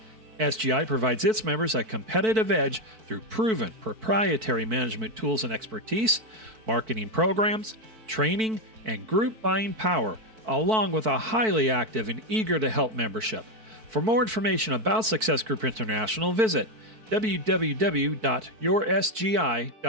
SGI provides its members a competitive edge through proven proprietary management tools and expertise, marketing programs, training, and group buying power, along with a highly active and eager to help membership. For more information about Success Group International, visit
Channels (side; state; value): left; late; 4.5 ms